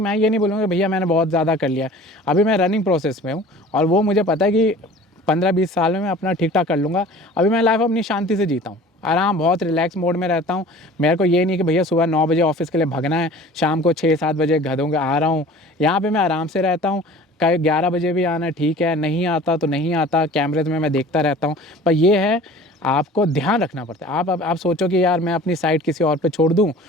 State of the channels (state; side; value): normal; both; correlation 0.44